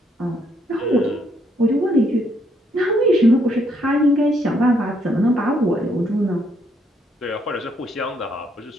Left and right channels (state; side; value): normal; both; correlation 0.71